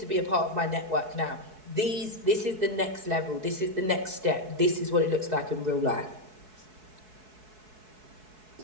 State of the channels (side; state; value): left; late; 4.6 ms